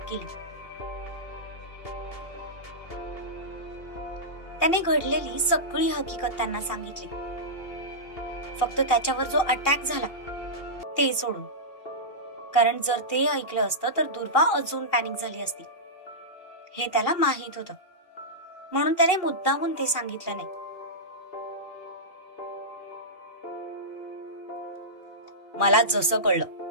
केली. त्याने घडलेली सगळी हकीकत त्यांना सांगितली, फक्त त्याच्यावर जो अटॅक झाला ते सोडून. कारण जर ते ऐकलं असतं तर दुर्वा अजून पॅनिक झाली असती, हे त्याला माहित होतं, म्हणून त्याने मुद्दामून ते सांगितलं नाही. मला जसं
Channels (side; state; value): right; late; 2.7 ms